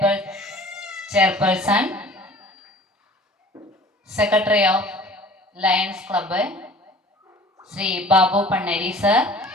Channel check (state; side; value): normal; both; correlation 0.47